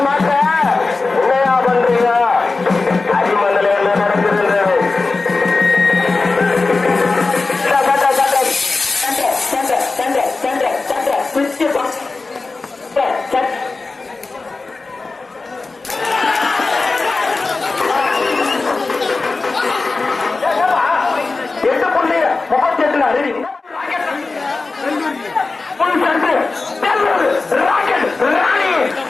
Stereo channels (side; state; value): right; quieter; 3.8 dB